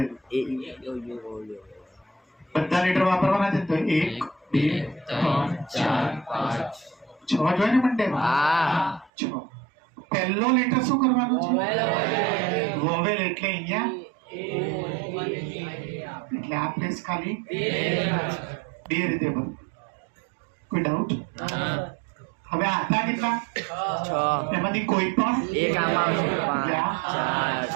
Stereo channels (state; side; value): drops out; left; at 9.1 s